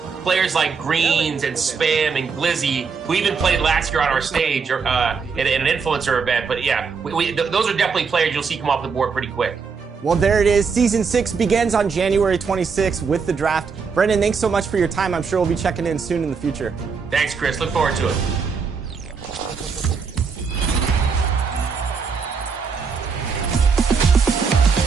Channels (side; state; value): left; quieter; 5.5 dB